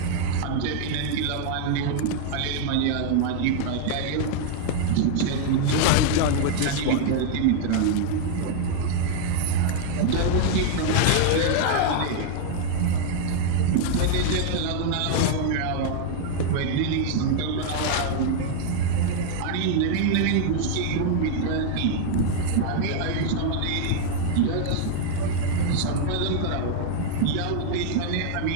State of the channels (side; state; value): both; different; correlation 0.00